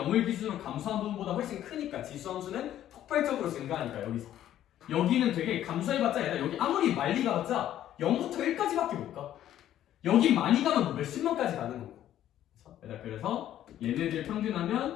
기준으로 감소한 부분보다 훨씬 크니까 지수함수는 폭발적으로 증가하니까 여기서. 여기는 되게 감소해봤자 얘들아, 여기 아무리 많이 가봤자 0부터 1까지밖에 못 가. 여기 많이 가면 뭐 몇십만까지 가는 거고. 그래서 얘네들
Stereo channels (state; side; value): quieter; right; 11.9 dB